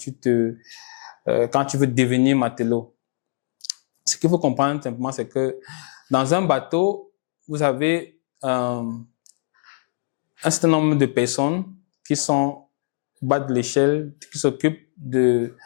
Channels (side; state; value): right; silent; 64 dB below the other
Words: veux devenir matelot. Ce qu'il faut comprendre simplement, c'est que dans un bateau, vous avez un certain nombre de personnes qui sont au bas de l'échelle, qui s'occupent de